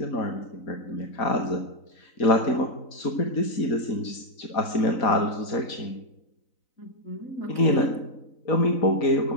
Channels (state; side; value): late; right; 4.0 ms